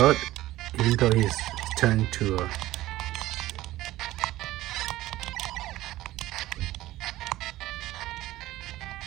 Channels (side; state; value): left; quieter; 16.1 dB